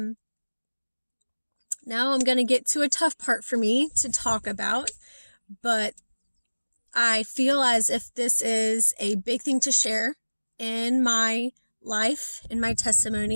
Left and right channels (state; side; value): inverted; both; correlation -1.00